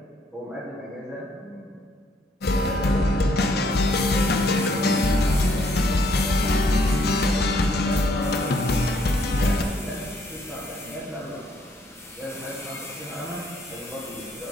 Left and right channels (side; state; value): both; normal; correlation 0.68